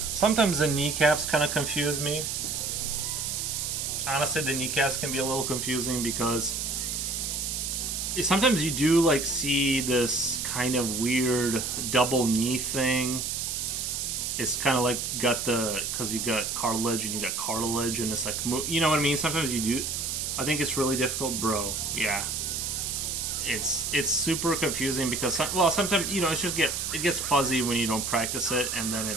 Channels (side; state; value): right; noise; hiss, 2 dB below the sound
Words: Sometimes the kneecaps kind of confuse me. Honestly, the kneecaps can be a little confusing because sometimes you do like see this kind of weird double knee thing. It's kind of like got the, because you got cartilage and you got cartilage and it's like, you know what I mean? Sometimes you do. I think it's really difficult, bro. Yeah. It's super confusing because well, sometimes, you know, it gets fuzzy when you don't practice it, and then